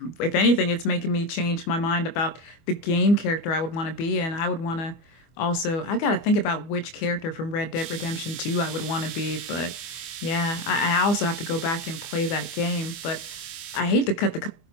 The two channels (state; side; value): late; right; 24 ms